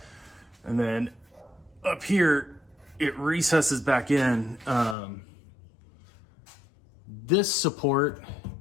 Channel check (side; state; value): right; drops out; at 5.0 s